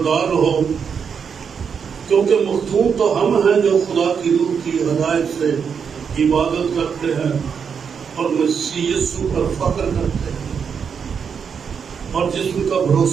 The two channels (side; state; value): left; quieter; 6.7 dB